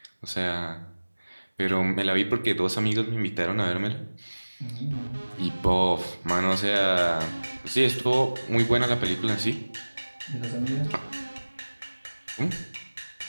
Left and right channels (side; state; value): both; inverted; correlation -1.00